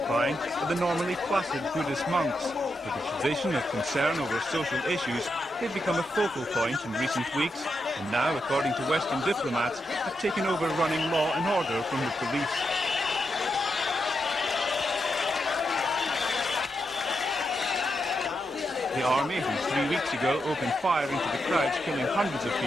are the normally placid Buddhist monks. With a tradition of concern over social issues, they've become a focal point in recent weeks, and now, according to Western diplomats, have taken over running law and order from the police. The army, who 3 weeks ago opened fire into the crowds, killing hundreds of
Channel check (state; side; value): normal; both; correlation 0.84